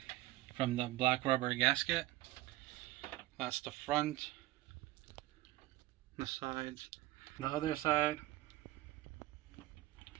from the black rubber gasket. That's the front, the sides, the other side,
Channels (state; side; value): quieter; left; 17.7 dB